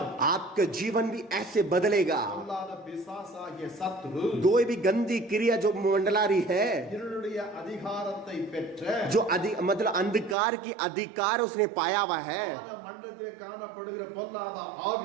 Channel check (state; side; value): drops out; left; at 10.4 s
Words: आपका जीवन भी ऐसे बदलेगा। அல்லாத பிசாசாகிய சத்ரு कोई भी गंदी क्रिया जो मंडला रही है, இருளுடைய அதிகாரத்தை பெற்ற जो मतलब अंधकार की अधिकार उसने पाया हुआ है, வான மண்டலத்திலே காணப்படுகிற பொல்லாத ஆவி